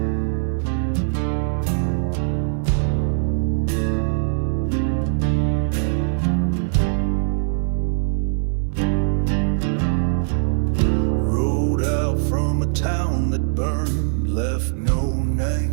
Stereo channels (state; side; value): silent; left; digital silence